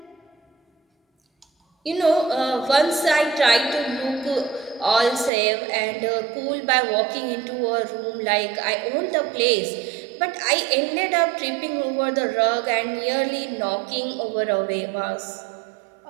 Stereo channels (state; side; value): drops out; left; at 5.3 s